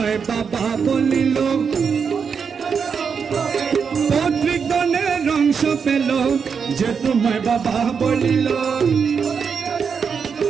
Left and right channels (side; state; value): left; quieter; 6.2 dB